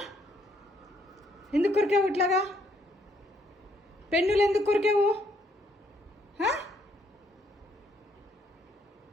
ఎందుకు కొరికావు ఇట్లాగా? పెన్నులు ఎందుకు కొరికావు?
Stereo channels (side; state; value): both; normal; correlation 0.70